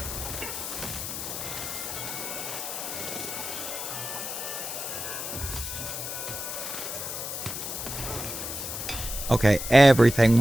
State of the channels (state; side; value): noise; left; hiss, 5 dB below the sound